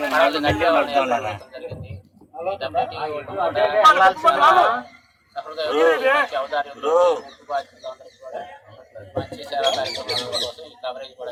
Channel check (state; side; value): identical; both; correlation 1.00